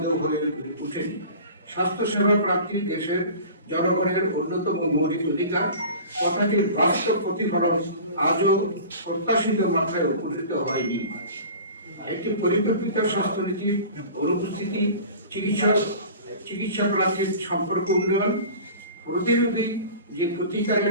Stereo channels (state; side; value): inverted; both; correlation -0.39